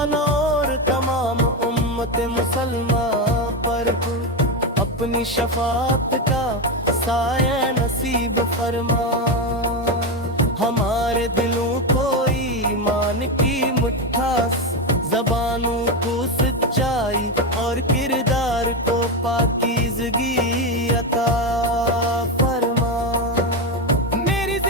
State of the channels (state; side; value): normal; both; correlation 0.13